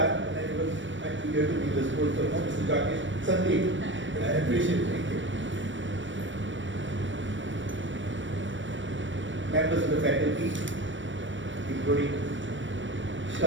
and I was actually here to be the school. So no, Mr. Jacques, Sandip, I appreciate it. Thank you. Members of the faculty, including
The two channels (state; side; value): late; left; 0.55 ms